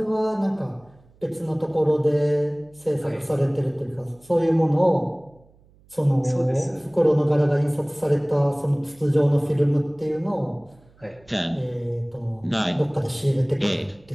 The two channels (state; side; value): noise; right; hum, 30 dB below the sound